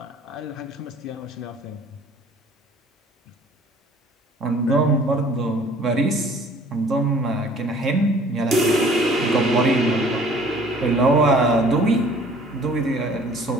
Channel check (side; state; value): both; normal; correlation 0.52